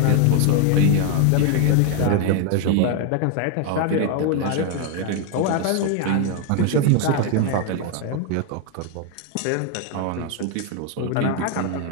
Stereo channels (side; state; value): both; different; correlation 0.01